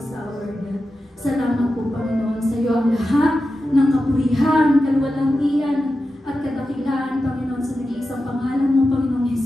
O Lord God. Salamat po, Panginoon, sa iyo ang lahat ng kapurihan, kaluwalangian, at kadakilaan, Panginoon, sa nag-iisang pangalan mo, Panginoong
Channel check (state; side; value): normal; both; correlation 0.91